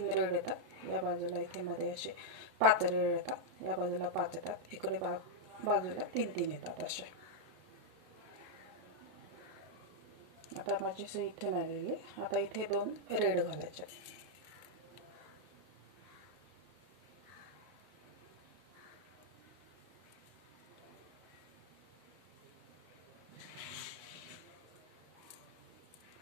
रेड येतात. या बाजूला इथे मध्ये असे 5 रेड येतात. या बाजूला 5 येतात. इकडे बाजूला 3-3 येतात असे. आता माझी सुई इथे आलेली. आता इथे 2 रेड घालायचे.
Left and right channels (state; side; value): late; left; 32 ms